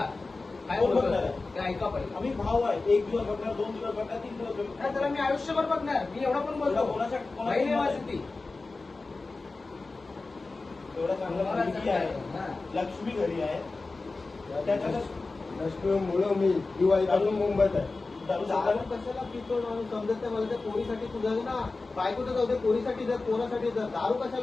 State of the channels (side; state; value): right; quieter; 3.6 dB